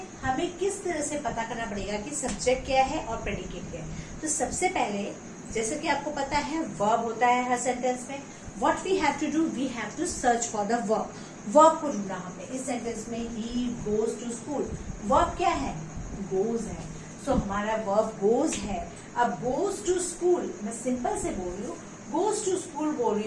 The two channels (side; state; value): both; identical; correlation 1.00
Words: हमें किस तरह से पता करना पड़ेगा कि सब्जेक्ट क्या है और प्रेडिकेट क्या है। तो सबसे पहले, जैसे कि आपको पता है वर्ब होता है हर सेंटेंस में, what we have to do, we have to search for the verb. Verb को ढूंढना हमने इस सेंटेंस में, he goes to school. Verb क्या है? गोज है। सो हमारा वर्ब गोज है। अब गोज टू स्कूल, मैं सिंपल से बोल रही हूँ, गोज टू स्कूल बोल रही